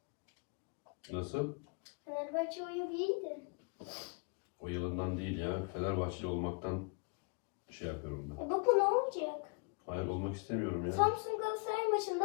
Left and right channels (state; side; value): quieter; right; 34.6 dB